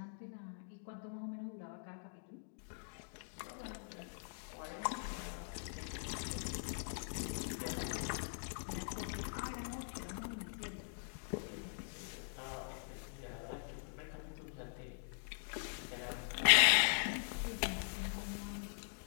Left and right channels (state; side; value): silent; right; digital silence